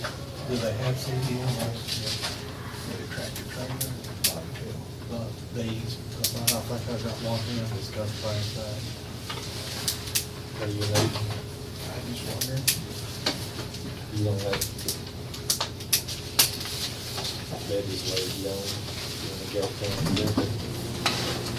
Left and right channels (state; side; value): identical; both; correlation 1.00